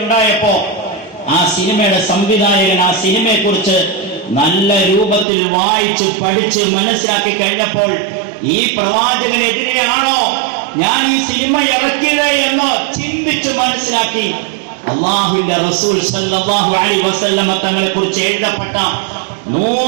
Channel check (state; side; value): drops out; left; at 5.2 s